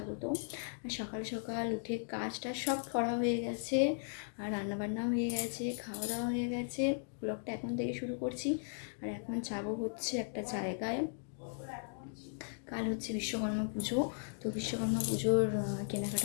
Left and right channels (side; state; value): right; silent; digital silence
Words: আর সকাল সকাল উঠে কাজটা সব করা হয়ে গেছে, আর রান্নাবান্নাও হয়ে গেছে, খাওয়া দাওয়া হয়ে গেছে। ব্লগটা এখন থেকে শুরু করছি। আর এখন যাবো হচ্ছে একটা জায়গায়। কাল হচ্ছে বিশ্বকর্মা পুজো, তো বিশ্বকর্মা পুজোর